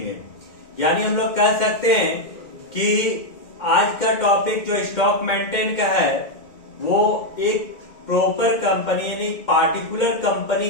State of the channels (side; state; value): right; late; 2.1 ms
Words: यानी हम लोग कह सकते हैं कि आज का टॉपिक जो स्टॉक मेंटेन का है वो एक प्रॉपर कंपनी यानी पार्टिकुलर कंपनी